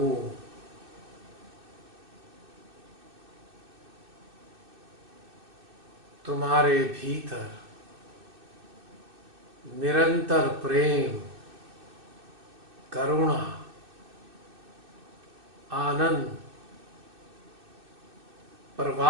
तुम्हारे भीतर निरंतर प्रेम, करुणा, आनंद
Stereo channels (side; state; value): left; late; 2.6 ms